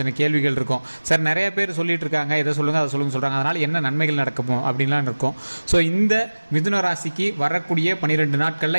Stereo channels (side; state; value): both; inverted; correlation -1.00